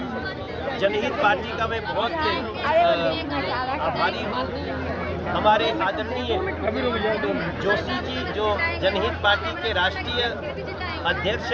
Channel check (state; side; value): identical; both; correlation 1.00